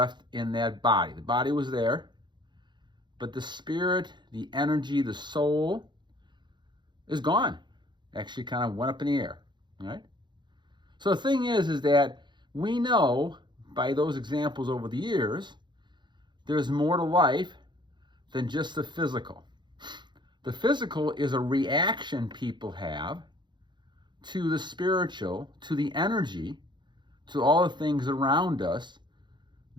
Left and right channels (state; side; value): late; left; 0.22 ms